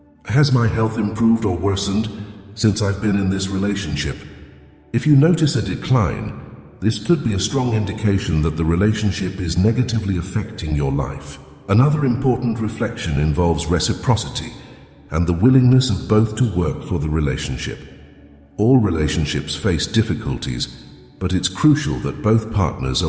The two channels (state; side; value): identical; both; correlation 1.00